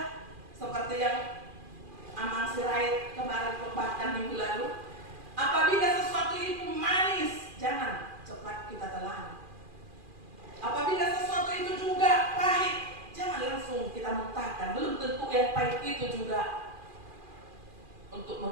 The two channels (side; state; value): left; late; 2.4 ms